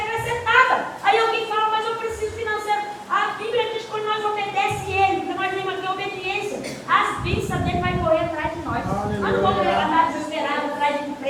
Aí alguém fala, mas eu preciso financeiro. A Bíblia diz que quando nós obedecemos ele, porque nós temos aqui obediência, as bênçãos dele vai correr atrás de nós. Nós não vamos andar desesperados atrás de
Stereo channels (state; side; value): identical; both; correlation 1.00